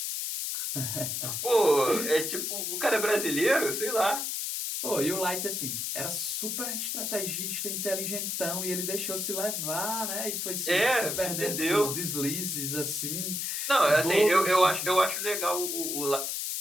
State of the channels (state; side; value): noise; left; hiss, 2 dB below the sound